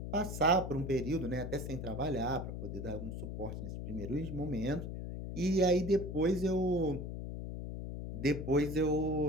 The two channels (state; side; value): noise; left; hum, 6 dB below the sound